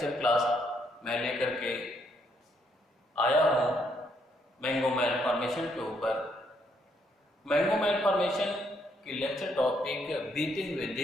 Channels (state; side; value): normal; both; correlation 0.73